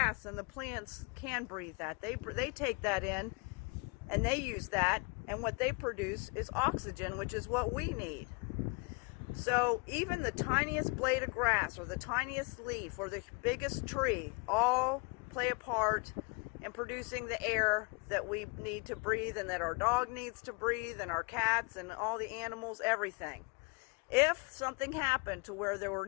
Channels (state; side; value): quieter; right; 32.0 dB